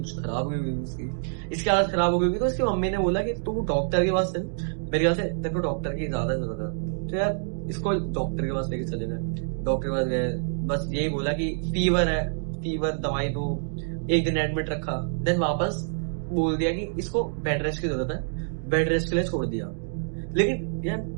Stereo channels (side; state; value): left; silent; digital silence